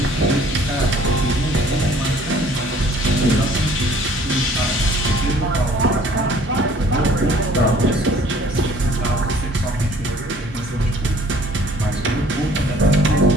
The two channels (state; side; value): normal; both; correlation 0.55